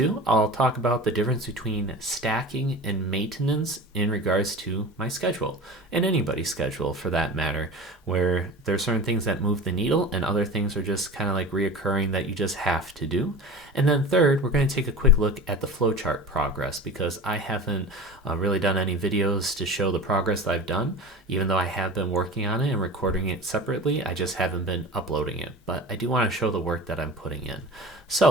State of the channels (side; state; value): both; normal; correlation 0.34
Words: I'll talk about the difference between stacking and maintenance in regards to my schedule, and anybody's schedule for that matter, where there are certain things that move the needle and other things are just kind of like reoccurring that you just have to do. And then third, we're going to take a quick look at the flowchart progress because I haven't really done any videos to show the progress that I've done, even though I have been working on it and recording it separately. I just haven't been uploading it, but I do want to show the work that I'm putting in.